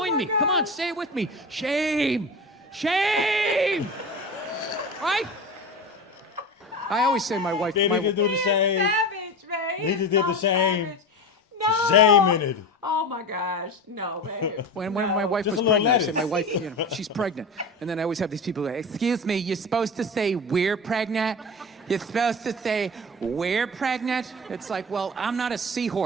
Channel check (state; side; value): normal; both; correlation 0.28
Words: me. Come on, say it with me. Shame. Shame. Right? I always say my wife... They need to do the same. Savage, man. He just did the shame. No. Shame in it. Oh my gosh, no, man. When my wife Just was a little pregnant, I said, lettuce. my wife, you know, she's pregnant. And then I always have these people like, excuse me, you're supposed to say we're pregnant? You're supposed to say we're pregnant? It's like, well, I'm not a